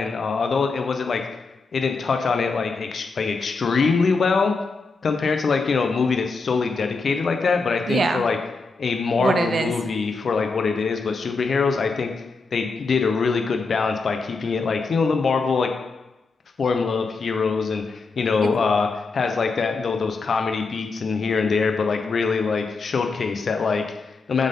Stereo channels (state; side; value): quieter; right; 4.1 dB